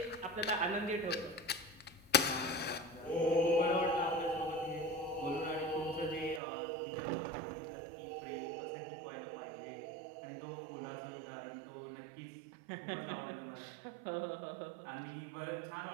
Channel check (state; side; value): drops out; left; at 6.4 s